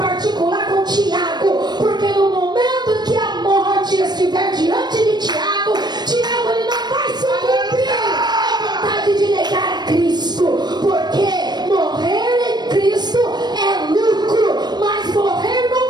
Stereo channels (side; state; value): left; late; 0.20 ms